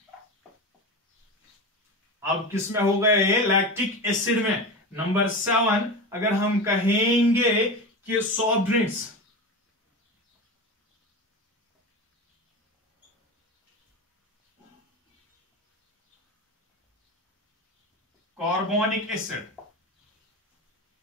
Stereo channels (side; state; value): both; normal; correlation 0.25